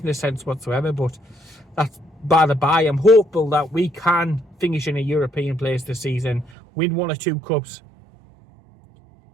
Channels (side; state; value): left; drops out; at 6.6 s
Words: sense whatsoever, but that's by the by. I'm hopeful that we can finish in a European place this season, win 1 or 2 cups,